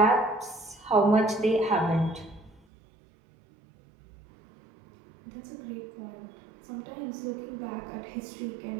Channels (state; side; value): drops out; left; at 2.6 s